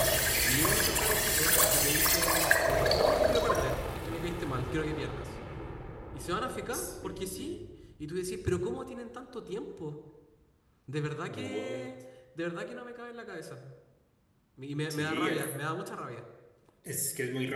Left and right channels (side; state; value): both; identical; correlation 1.00